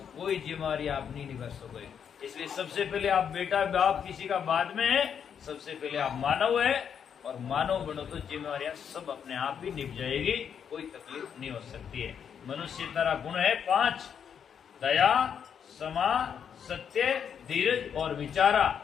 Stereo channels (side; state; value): right; quieter; 7.8 dB